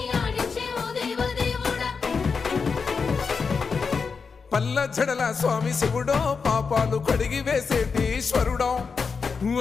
ఆడించే ఓ దేవదేవుడా పల్ల జడల స్వామి శివుడో పాపాలు కడిగి వేసేటి ఈశ్వరుడో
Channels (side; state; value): right; quieter; 5.2 dB